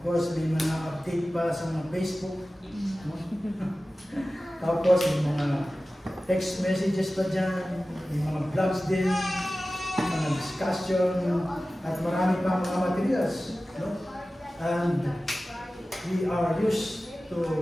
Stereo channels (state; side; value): normal; both; correlation 0.96